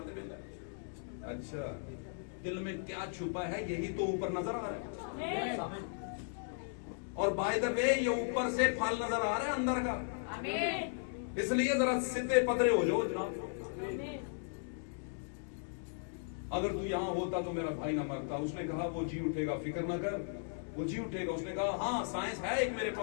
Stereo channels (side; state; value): right; silent; digital silence